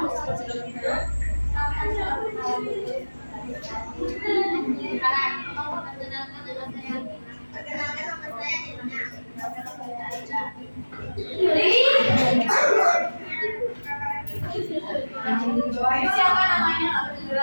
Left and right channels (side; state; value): both; inverted; correlation -1.00